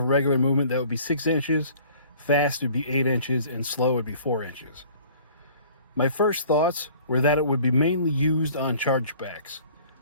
regular movement, that would be 6 inches, fast would be 8 inches, and slow would be 4 inches. My first thoughts were that it would be mainly used on chargebacks.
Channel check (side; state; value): both; inverted; correlation -0.51